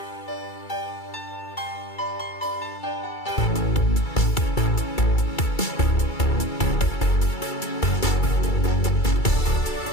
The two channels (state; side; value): late; right; 2.3 ms